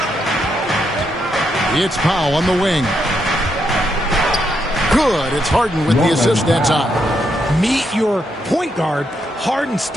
It's Powell on the wing. Good. It's Harden with the assist that time. Meet your point guard. Harden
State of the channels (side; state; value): both; normal; correlation 0.79